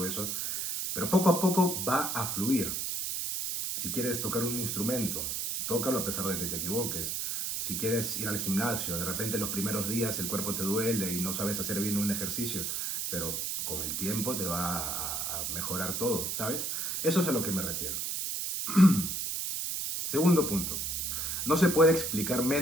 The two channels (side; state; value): right; noise; hiss, 2 dB below the sound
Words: eso, pero poco a poco va a fluir. Si quieres tocar un instrumento, tócalo a pesar de que te equivoques. Si quieres ir al gimnasio, de repente los primeros días el cuerpo te duele y no sabes hacer bien un ejercicio, pero con el tiempo te va a mejorar todo, ¿sabes? Eso es a lo que me refiero. Segundo punto. No se puede explicar